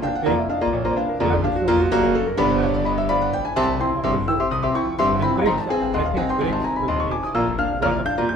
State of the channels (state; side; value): normal; both; correlation 0.64